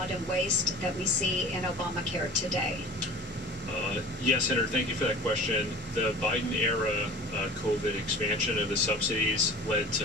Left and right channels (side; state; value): both; normal; correlation 0.40